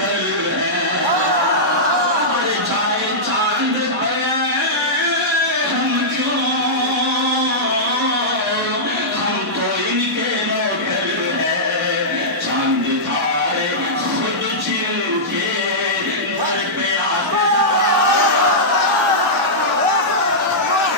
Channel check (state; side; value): normal; both; correlation -0.12